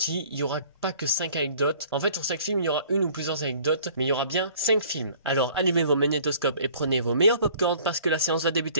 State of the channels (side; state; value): both; inverted; correlation -0.53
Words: il n'y aura pas que 5 anecdotes. En fait, sur chaque film, il y aura une ou plusieurs anecdotes, mais il y aura bien 5 films. Alors allumez vos magnétoscopes et prenez vos meilleurs popcorn parce que la séance va